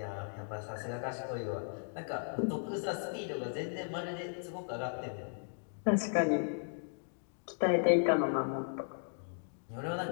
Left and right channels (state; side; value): silent; right; digital silence